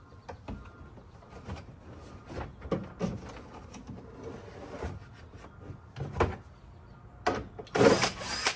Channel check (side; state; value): both; identical; correlation 1.00